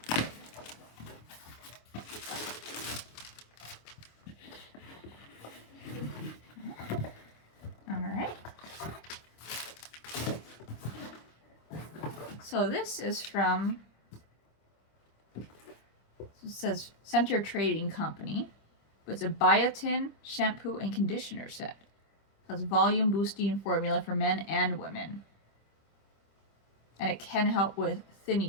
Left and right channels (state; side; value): late; right; 25 ms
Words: So this is from, it says Center Trading Company, but it's a biotin shampoo and conditioner set. It has volume boosting formula for men and women. And it can help with